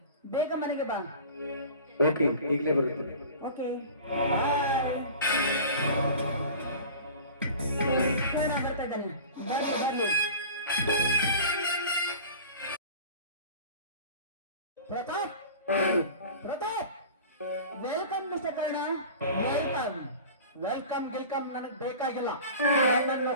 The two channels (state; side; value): inverted; both; correlation -0.39